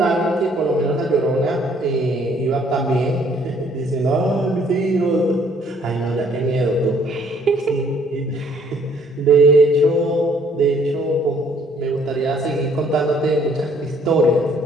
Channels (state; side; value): normal; both; correlation 0.62